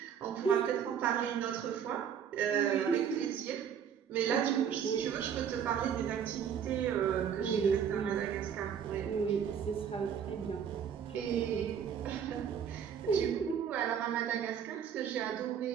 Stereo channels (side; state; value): left; quieter; 8.1 dB